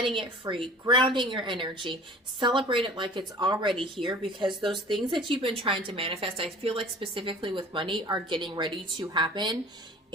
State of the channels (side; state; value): both; normal; correlation 0.45